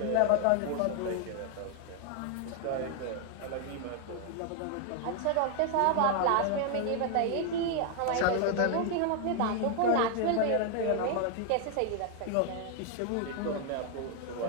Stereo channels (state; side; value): different; both; correlation 0.00